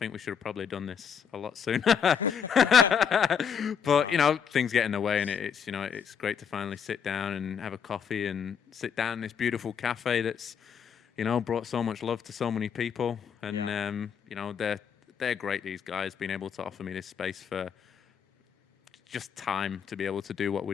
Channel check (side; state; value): right; quieter; 7.3 dB